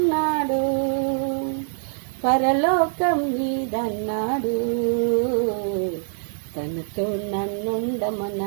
పరలోకం నీదన్నాడు, తనతో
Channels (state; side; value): silent; left; digital silence